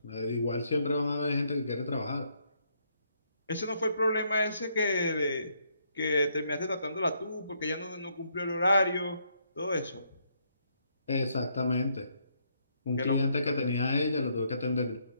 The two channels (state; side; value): inverted; both; correlation -0.73